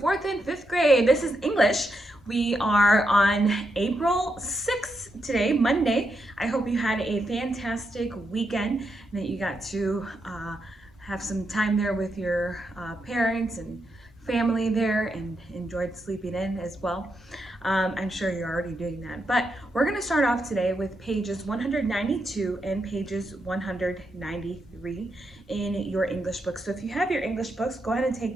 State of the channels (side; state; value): both; normal; correlation 0.83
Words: fourth and fifth grade. This is English. We are on April 6th today, Monday. I hope you had a fantastic weekend and that you got to have some time there with your parents and family there and enjoyed sleeping in as well. I'm sure you're already doing that. But we're going to start off today with pages 192 and pages 193 in your English books. So if you have your English books, go ahead and take